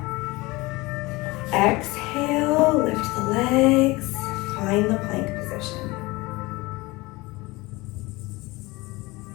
Exhale, lift the legs, find the plank position.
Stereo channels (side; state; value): right; quieter; 22.3 dB